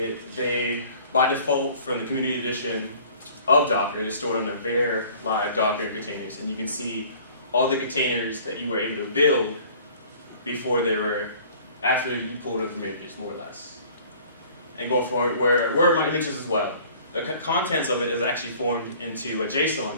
they by default from the community edition of Docker, they're stored on the var live Docker containers, and you can see all the containers that you were able to build before they were, after you pulled them from images, more or less. And going forward, where are my images as well? The contents of it is actually formed into a JSON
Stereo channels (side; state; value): both; inverted; correlation -0.51